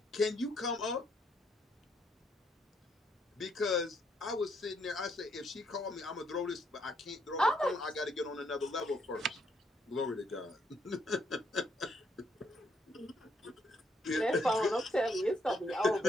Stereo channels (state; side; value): normal; both; correlation 0.73